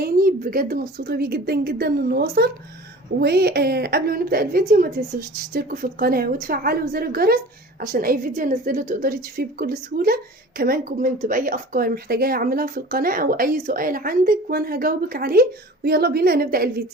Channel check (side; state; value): both; normal; correlation 0.41